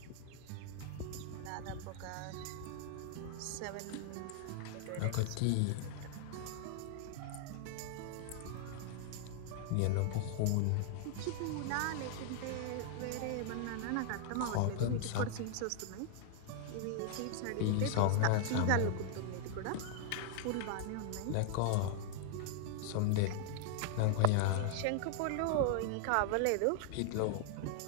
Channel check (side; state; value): both; different; correlation 0.00